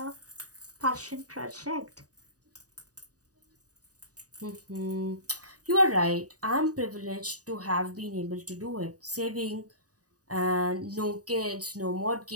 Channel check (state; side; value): late; left; 0.67 ms